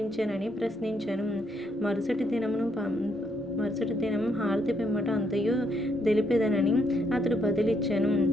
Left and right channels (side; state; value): both; normal; correlation 0.74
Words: ప్రశ్నించెను. మరుసటి దినం హారతి పిమ్మట అంతయు తెలిపెదనని అతడు బదిలిచ్చెను.